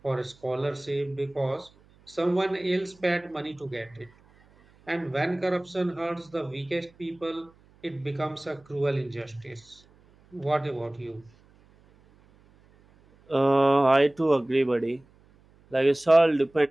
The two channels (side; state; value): right; noise; hum, 30 dB below the sound